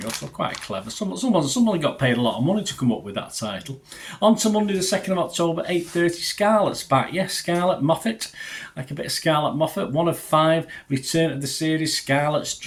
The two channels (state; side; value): identical; both; correlation 1.00